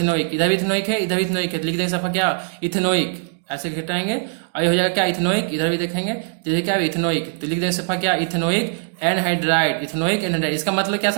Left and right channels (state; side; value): silent; left; digital silence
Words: इधर भी इथेनोइक है, इधर भी इथेनोइक है, लिख देंगे सफा क्या इथेनोइक, ऐसे घटाएंगे और ये हो जाएगा क्या इथेनोइक, इधर भी देखेंगे तो ये क्या है इथेनोइक, तो लिख देंगे सफा क्या इथेनोइक एनहाइड्राइड, इथेनोइक एनहाइड्राइड। इसका मतलब क्या